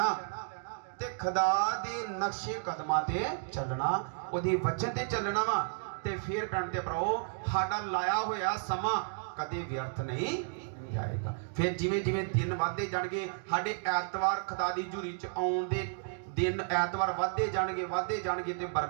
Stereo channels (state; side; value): silent; left; digital silence